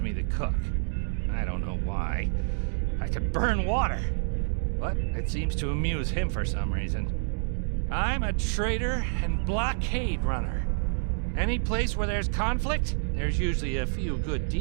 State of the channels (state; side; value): silent; left; digital silence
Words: the cook. I don't know why. I could burn water, but it seems to amuse him for some reason. I'm a trader and blockade runner. Any place where there's conflict, there's usually a few good